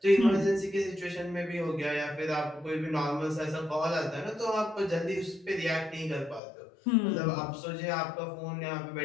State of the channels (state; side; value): drops out; right; at 6.4 s